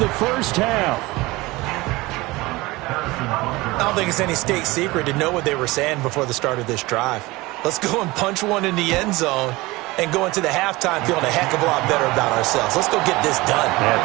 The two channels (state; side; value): quieter; left; 21.1 dB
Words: first half. I don't think it's any state secret to know what they were saying before the start of this drive. Let's go and punch one in the end zone and go into the halftime feeling a heck of a lot better about ourselves. Let's go get this done. Yeah,